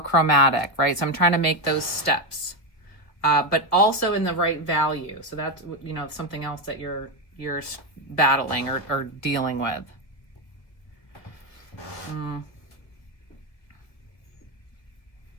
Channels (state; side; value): late; right; 1.9 ms